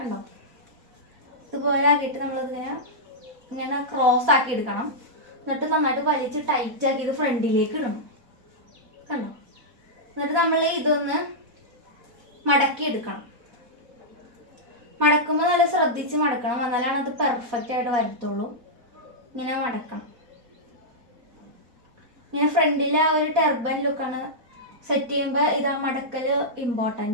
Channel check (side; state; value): left; late; 4.2 ms